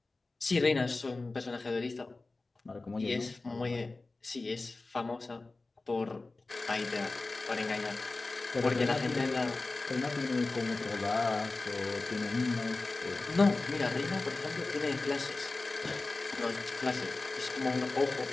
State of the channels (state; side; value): quieter; right; 3.4 dB